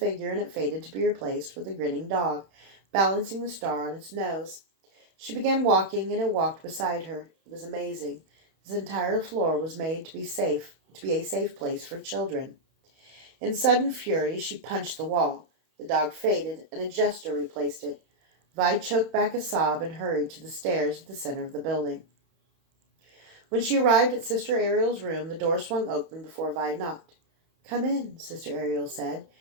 and it faded to be replaced with a grinning dog, balancing the star on its nose. She began walking, and it walked beside her. It was amazing. This entire floor was made to be a safe place for children. In sudden fury, she punched the wall. The dog faded, and a jester replaced it. Vi choked back a sob and hurried to the stairs at the center of the building. When she arrived at Sister Ariel's room, the door swung open before Vi knocked. "Come in," Sister Ariel said.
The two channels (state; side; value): late; left; 31 ms